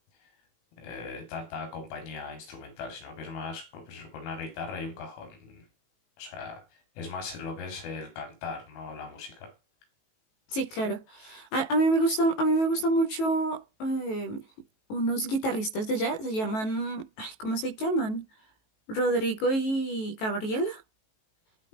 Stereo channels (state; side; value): late; right; 18 ms